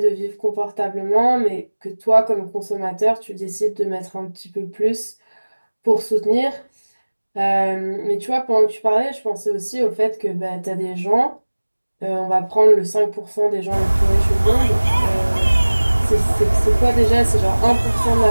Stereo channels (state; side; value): inverted; both; correlation -1.00